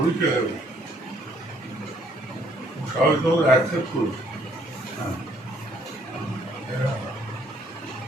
হয়েছে, সবাই তোমাকে অ্যাকসেপ্ট করেছে।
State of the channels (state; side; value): normal; both; correlation 0.65